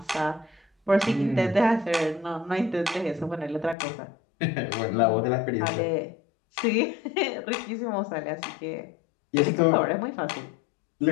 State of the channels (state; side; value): drops out; right; at 3.8 s